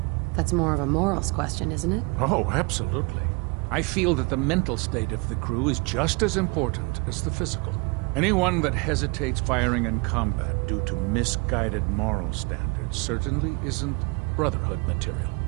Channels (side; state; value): left; quieter; 28.9 dB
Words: That's more of a morals question, isn't it? Oh, absolutely. I feel that the mental state of the crew is just as important as the physical. Anyone that hesitates firing in combat due to misguided moral standards certainly isn't Brotherhood material.